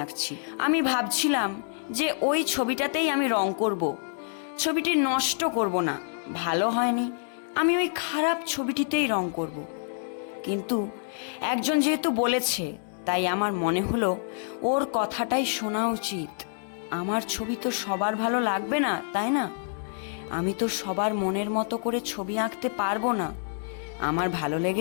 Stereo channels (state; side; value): silent; right; 60 dB below the other